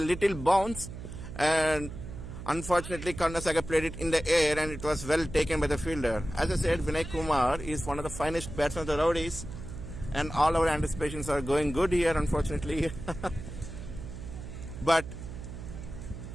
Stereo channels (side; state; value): right; noise; hum, 10 dB below the sound